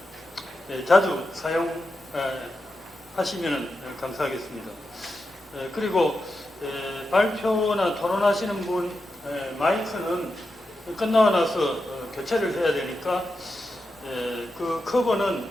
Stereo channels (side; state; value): both; normal; correlation 0.89